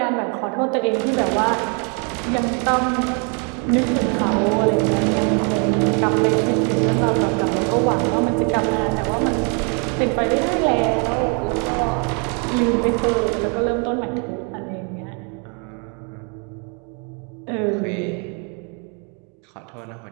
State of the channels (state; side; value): quieter; left; 36.6 dB